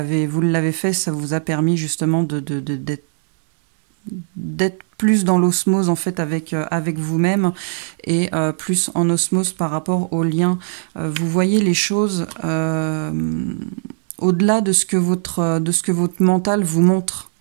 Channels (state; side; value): silent; left; digital silence